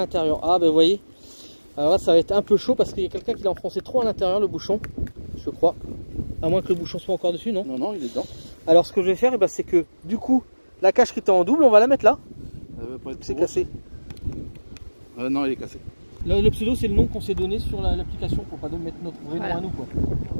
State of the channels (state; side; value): inverted; both; correlation -1.00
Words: Ah ben vous voyez. Alors là ça va être un peu chaud parce qu'il y a quelqu'un qui l'a enfoncé trop à l'intérieur, le bouchon. Je crois. À moins que le bouchon soit encore dessus, non? Non, non, il est dedans. Alors ce que je vais faire, c'est que du coup, la cache qui était en double, on va la mettre là. C'est cassé. Non, il est cassé. Le pseudo, c'est le nom qu'on s'est donné sur l'application pour pas mettre notre vrai nom à nous. Quoi.